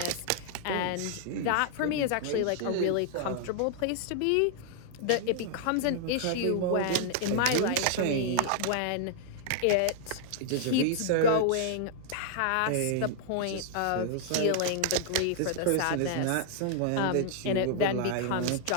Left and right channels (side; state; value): both; different; correlation -0.01